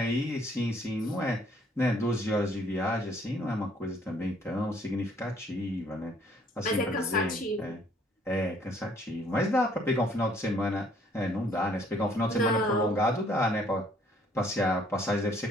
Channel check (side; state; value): both; normal; correlation 0.63